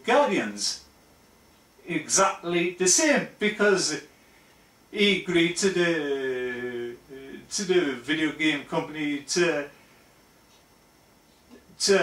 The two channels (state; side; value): identical; both; correlation 1.00